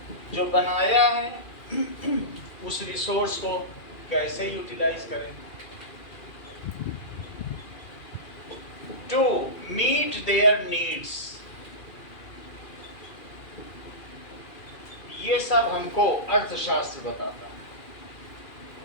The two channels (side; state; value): right; late; 2.4 ms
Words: जो बनाया है उस रिसोर्स को कैसे यूटिलाइज करें, टू मीट देयर नीड्स, ये सब हमको अर्थशास्त्र बताता है।